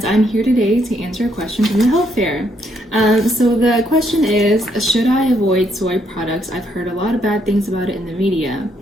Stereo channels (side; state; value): both; normal; correlation 0.73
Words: I'm here today to answer a question from the health fair. So the question is, should I avoid soy products? I've heard a lot of bad things about it in the media.